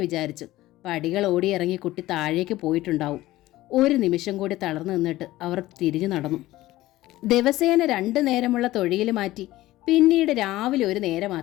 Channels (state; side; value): quieter; right; 16.7 dB